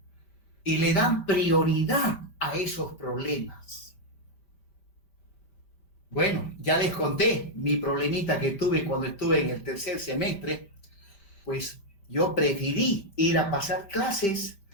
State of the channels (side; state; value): right; late; 5.0 ms